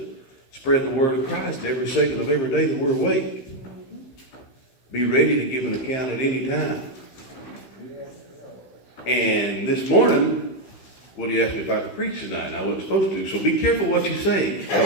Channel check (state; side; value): late; right; 16 ms